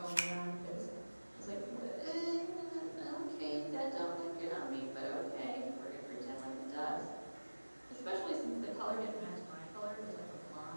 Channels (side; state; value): both; inverted; correlation -1.00